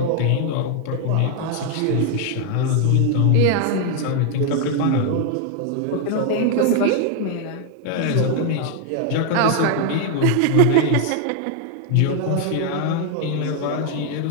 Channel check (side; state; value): both; different; correlation 0.00